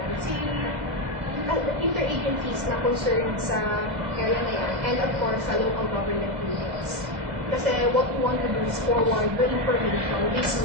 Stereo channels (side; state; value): left; late; 2.0 ms